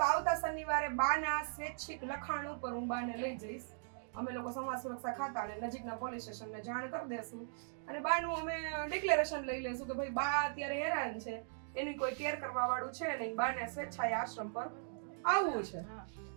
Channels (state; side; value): silent; left; digital silence